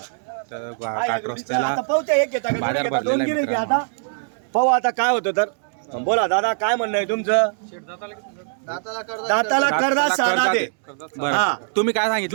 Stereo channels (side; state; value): left; silent; 64 dB below the other